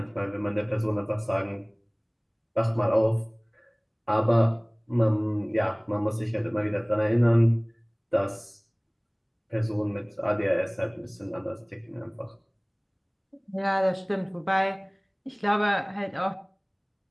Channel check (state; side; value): identical; both; correlation 1.00